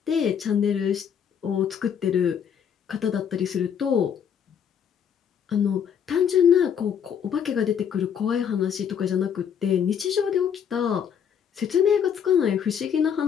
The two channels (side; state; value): right; quieter; 8.0 dB